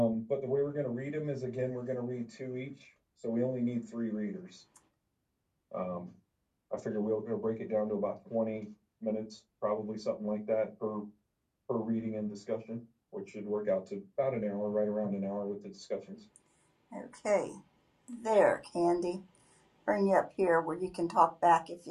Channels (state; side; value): identical; both; correlation 1.00